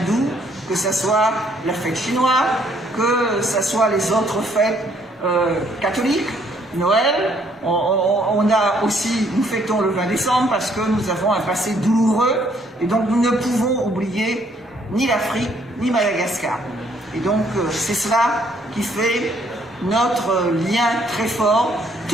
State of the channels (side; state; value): both; normal; correlation 0.66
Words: que ce soit la fête chinoise, que ce soit les autres fêtes catholiques. Noël, nous fêtons le 20 décembre parce que nous avons un passé douloureux et donc nous ne pouvons oublier ni l'Afrique ni Madagascar. Et donc c'est cela qui fait notre lien très fort,